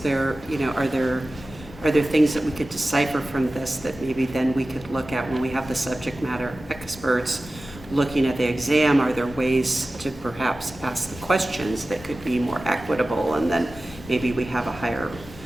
you know, are there things that we could decipher from this that maybe then we could look at when we have the subject matter experts looking at the exam? Are there ways to perhaps ask the questions that could be more equitable, and then maybe we have a higher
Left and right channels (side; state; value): both; normal; correlation 0.96